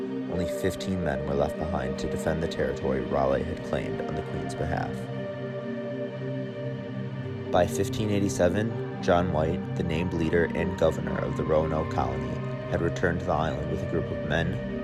only 15 men were left behind to defend the territory Raleigh had claimed on the Queen's behalf. By 1587, John White, the named leader and governor of the Roanoke Colony, had returned to the island with a group of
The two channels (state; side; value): identical; both; correlation 1.00